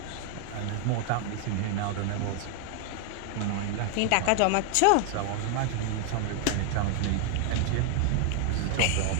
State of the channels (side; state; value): both; different; correlation 0.00